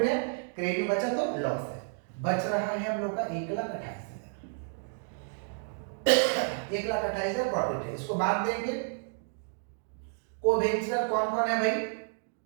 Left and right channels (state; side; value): silent; left; 57 dB below the other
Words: है, क्रेडिट में बचा तो लॉस है। बच रहा है हम लोग का 1,28,000, 1,28,000 प्रॉफिट है। इसको बांट देंगे। को वेंचर कौन कौन है भाई?